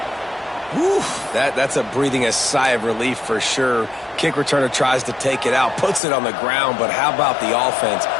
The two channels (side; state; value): right; drops out; at 6.0 s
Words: Whew, that's a breathing a sigh of relief for sure. Kick returner tries to take it out, puts it on the ground, but how about the offense